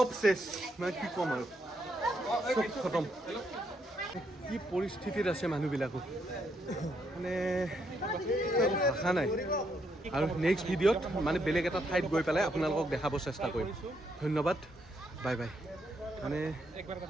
চেছ মানে কি ক'ম আৰু চব খতম কি পৰিস্থিতিত আছে মানুহবিলাকো মানে ভাষা নাই আৰু নেক্সট ভিডিঅ'ত মানে বেলেগ এটা ঠাইত গৈ পেলাই আপোনালোকক দেখাব চেষ্টা কৰিম ধন্যবাদ বাই বাই মানে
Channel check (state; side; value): normal; both; correlation 0.76